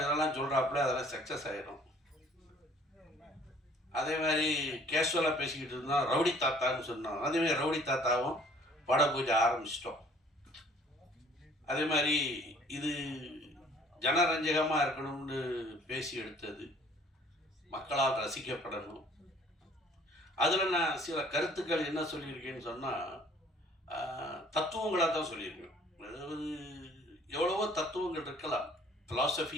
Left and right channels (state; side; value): normal; both; correlation 0.56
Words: சொல்கிறாப்புல அதெல்லாம் சக்ஸஸ் ஆகிடும். அதே மாதிரி கேஷுவலாக பேசிக்கிட்டு இருந்தோம், ரவுடி தாத்தான்னு சொன்னோம். அதேமாதிரி ரவுடி தாத்தாவும் பட பூஜை ஆரம்பிச்சிட்டோம். அதே மாதிரி இது ஜனரஞ்சகமாக இருக்கணும்னு பேசி எடுத்தது, மக்களால் ரசிக்கப்படணும். அதில் நான் சில கருத்துக்கள் என்ன சொல்லியிருக்கேன்னு சொன்னால், தத்துவங்களாக தான் சொல்லியிருக்கேன். அதாவது எவ்வளவோ தத்துவங்கள் இருக்கலாம்,